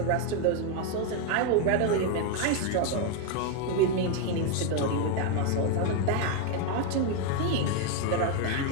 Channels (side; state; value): both; different; correlation 0.01